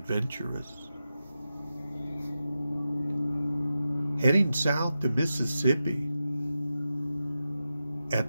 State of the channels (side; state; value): both; inverted; correlation -0.90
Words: Heading south to Mississippi, at